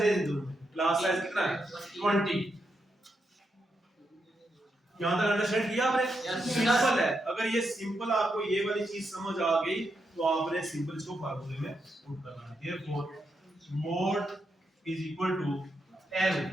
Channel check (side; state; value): both; normal; correlation 0.83